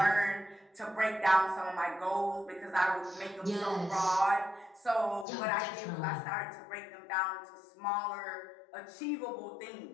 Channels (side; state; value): right; drops out; at 5.2 s